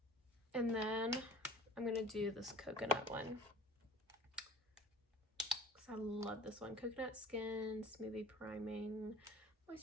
And then I'm gonna do this coconut one. Because I love this one. Coconut Skin Smoothie Priming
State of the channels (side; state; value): both; normal; correlation 0.45